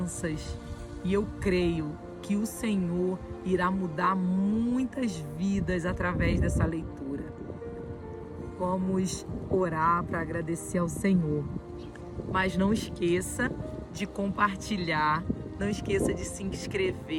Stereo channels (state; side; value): identical; both; correlation 1.00